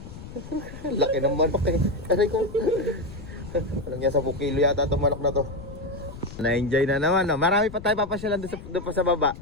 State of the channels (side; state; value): left; noise; rumble, 14 dB below the sound